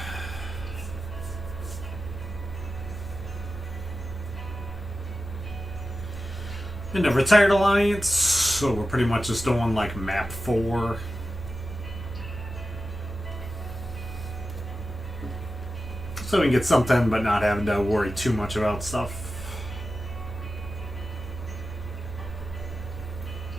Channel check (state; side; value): normal; both; correlation 0.93